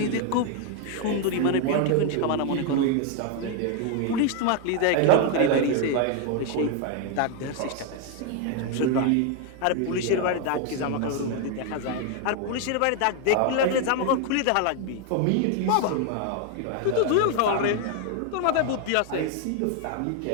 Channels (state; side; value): different; both; correlation 0.01